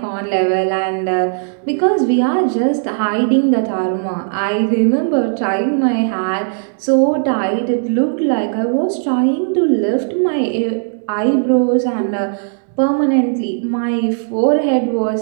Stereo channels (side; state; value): left; silent; digital silence